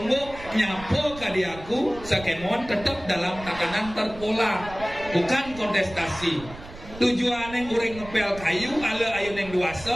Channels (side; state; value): right; noise; rumble, 15 dB below the sound